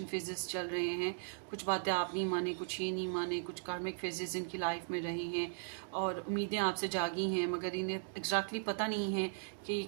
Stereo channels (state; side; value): silent; left; digital silence